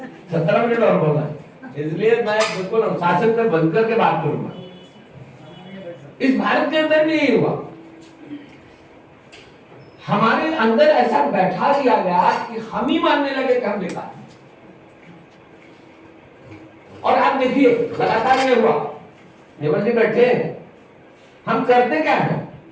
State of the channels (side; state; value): both; identical; correlation 1.00